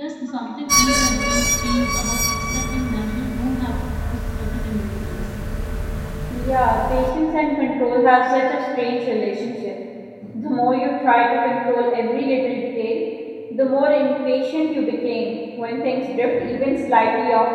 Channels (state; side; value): identical; both; correlation 1.00